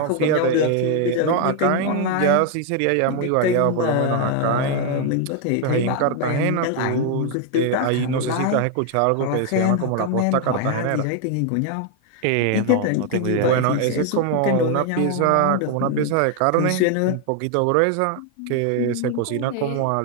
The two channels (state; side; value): different; both; correlation 0.01